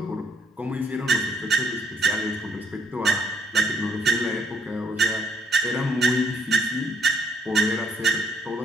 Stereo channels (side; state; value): both; normal; correlation 0.68